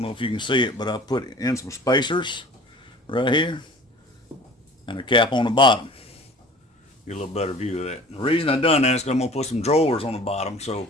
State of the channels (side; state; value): both; normal; correlation 0.45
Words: know if you can see it, but I put in some spacers right here and a cap on the bottom. Get a little better view of that. The reason I've done that is because I'm going to put some drawers on the bottom, so